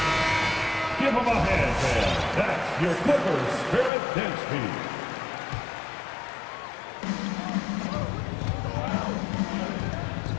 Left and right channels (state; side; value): drops out; right; at 3.9 s